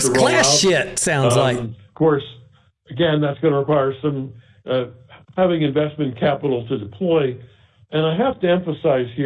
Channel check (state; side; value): identical; both; correlation 1.00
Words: class shit, sounds like. Of course, again, that's going to require some having investment capital to deploy. And I have to emphasize